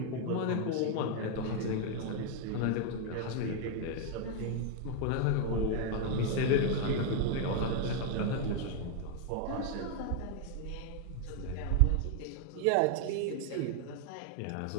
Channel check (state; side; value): different; both; correlation 0.00